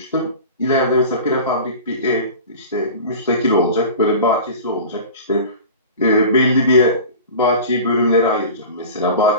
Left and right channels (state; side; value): inverted; both; correlation -0.36